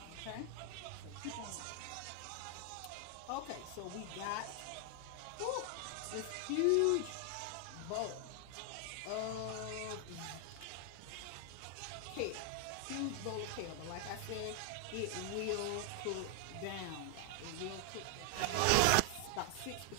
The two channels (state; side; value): different; both; correlation 0.00